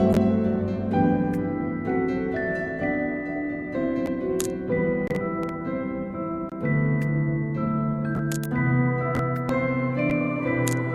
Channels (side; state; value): both; identical; correlation 1.00